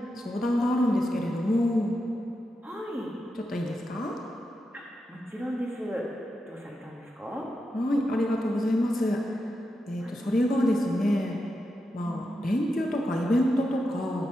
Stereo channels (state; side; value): normal; both; correlation 0.87